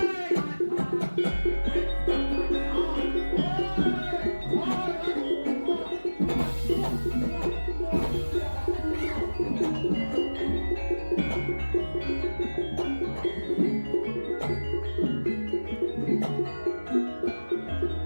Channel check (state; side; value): inverted; both; correlation -1.00